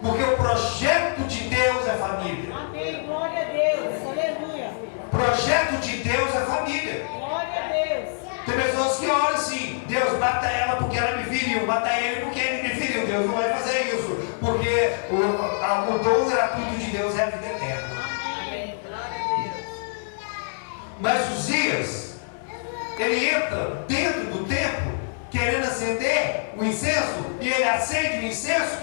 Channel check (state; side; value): silent; right; digital silence